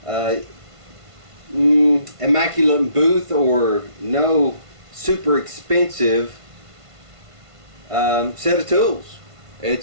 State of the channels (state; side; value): late; left; 1.5 ms